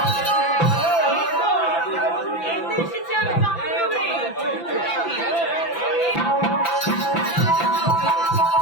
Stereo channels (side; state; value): right; late; 5.9 ms